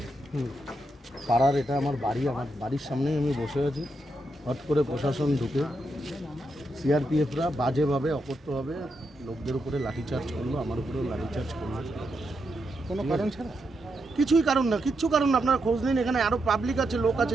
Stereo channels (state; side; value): normal; both; correlation 0.83